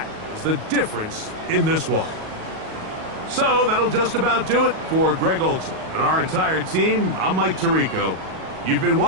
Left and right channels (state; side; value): late; left; 38 ms